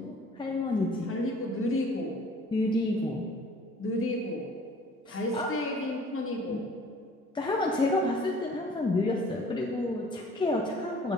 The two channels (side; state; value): both; normal; correlation 0.52